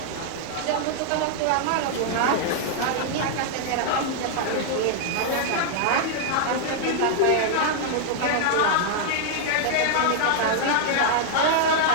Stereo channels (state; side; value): different; both; correlation -0.01